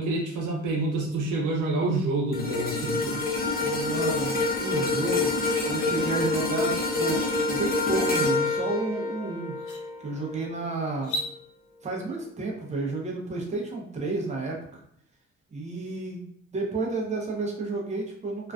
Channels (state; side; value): normal; both; correlation 0.30